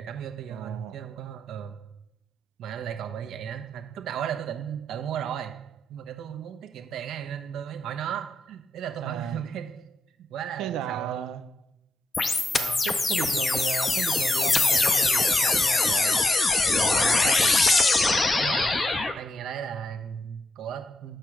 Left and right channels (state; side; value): normal; both; correlation 0.83